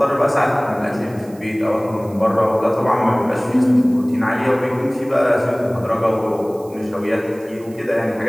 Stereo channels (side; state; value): right; noise; hiss, 26 dB below the sound